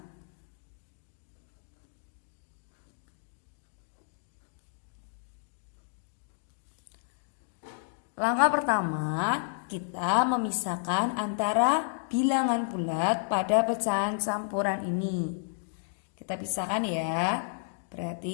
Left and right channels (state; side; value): silent; right; digital silence